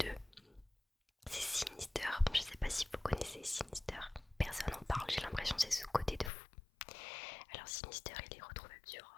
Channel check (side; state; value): right; drops out; at 6.3 s